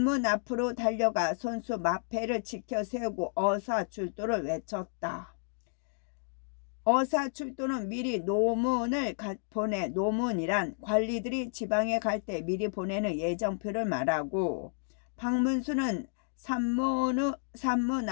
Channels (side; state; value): right; silent; digital silence